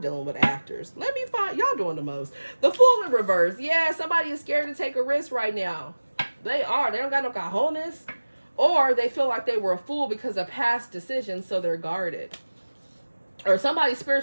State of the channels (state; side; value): inverted; both; correlation -1.00